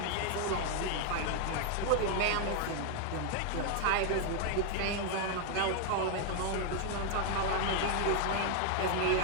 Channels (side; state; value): both; different; correlation 0.00